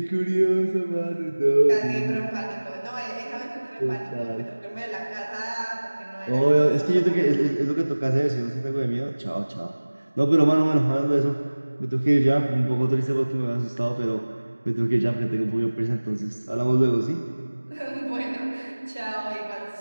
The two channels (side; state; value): both; inverted; correlation -1.00